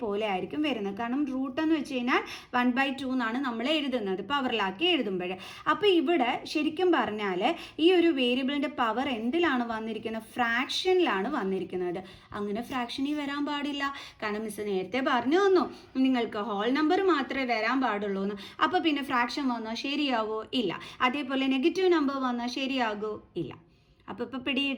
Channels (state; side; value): identical; both; correlation 1.00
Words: ആയിരിക്കും വരുന്നത്. കാരണം റൂട്ട് എന്ന് വെച്ച് കഴിഞ്ഞാൽ 1/2 എന്നാണ് നമ്മൾ എഴുതുന്നത് പവറിലാക്കി എഴുതുമ്പോൾ. അപ്പോൾ ഇവിടെ ശരിക്കും പറഞ്ഞാൽ ഈ ഒരു വേരിയബിളിൻ്റെ പവർ എന്തിലാണ് വന്നിരിക്കുന്നത്? ഫ്രാക്ഷനിലാണ് വന്നിരിക്കുന്നത്. അങ്ങനെ ഫ്രാക്ഷനിൽ വരാൻ പാടില്ല. കാരണം മിസ് നേരത്തെ പറഞ്ഞു തന്നു നിങ്ങൾക്ക് ഹോൾ നമ്പർ മാത്രമേ വരാൻ പാടുള്ളൂ എന്ന്. അപ്പോൾ പിന്നെ ഫ്രാക്ഷൻ വന്നാൽ ശരിയാവോ? ഇല്ല. അതേപോലെ നെഗറ്റീവ് നമ്പർ വന്നാൽ ശരിയാകോ? ഇല്ല. അപ്പോൾ ഇപ്പോൾ